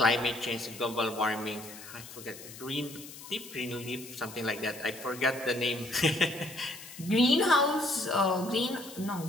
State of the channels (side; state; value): left; noise; hiss, 15 dB below the sound